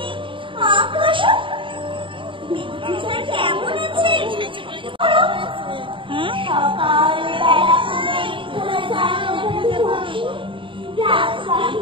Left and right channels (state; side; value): late; left; 0.25 ms